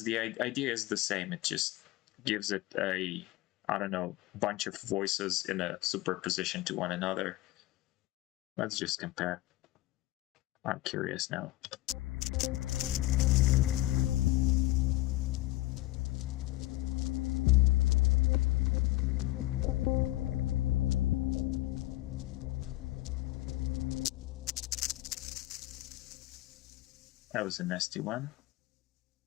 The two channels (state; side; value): quieter; right; 17.5 dB